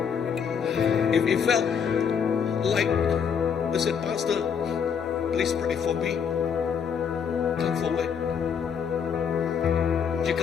If you felt like, I said, Pastor, please pray for me, come forward.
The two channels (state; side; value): quieter; right; 7.1 dB